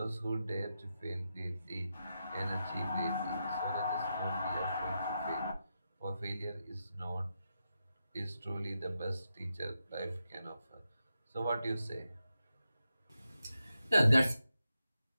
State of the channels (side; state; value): both; inverted; correlation -0.87